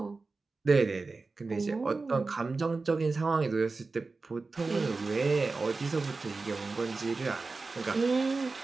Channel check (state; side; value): quieter; left; 3.9 dB